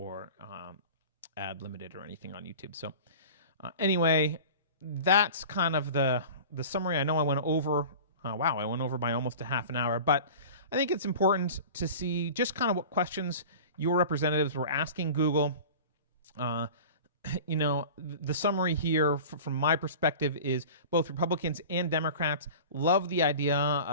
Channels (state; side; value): inverted; both; correlation -0.37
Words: ad limited or anything on YouTube. So anyway, that's kind of the summary. I know I went over. I went over by almost a half an hour, but I think it's important to see just kind of what questions your representatives were asking Google. The summary here from my perspective is both Republicans and Democrats love the idea